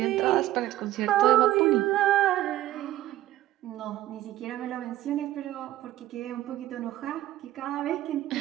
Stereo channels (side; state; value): left; quieter; 14.5 dB